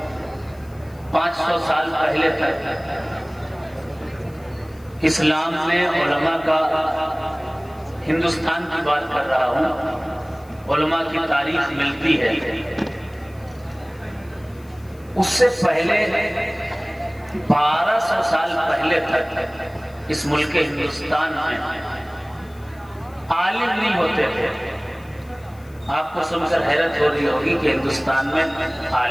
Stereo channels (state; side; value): noise; left; hiss, 28 dB below the sound